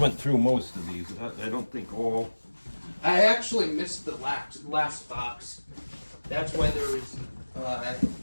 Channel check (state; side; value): inverted; both; correlation -1.00